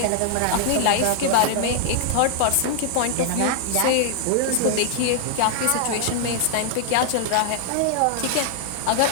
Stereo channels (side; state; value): both; different; correlation 0.00